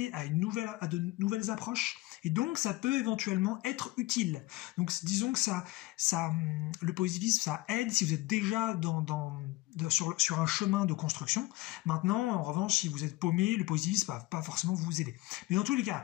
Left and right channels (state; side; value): quieter; right; 19.6 dB